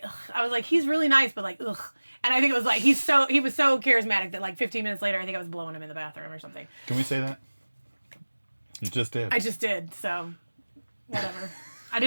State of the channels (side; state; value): both; inverted; correlation -1.00